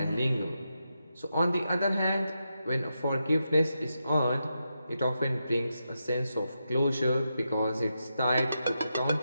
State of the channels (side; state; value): both; inverted; correlation -0.86